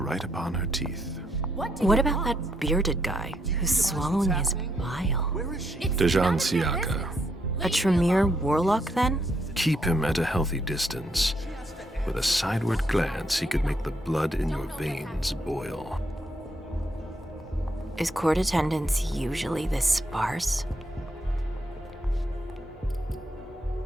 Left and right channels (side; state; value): both; normal; correlation 0.76